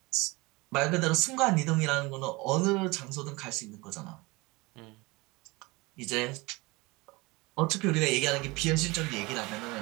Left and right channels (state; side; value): quieter; left; 23.9 dB